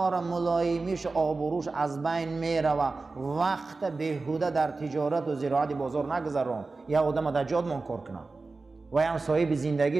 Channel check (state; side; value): quieter; left; 3.8 dB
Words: را ملایمیش آبروش از بین میره و وقت بهوده در تجارت و زراعت بازار نگذارم. یا آدم در جاد منکر کنه و هم صاحب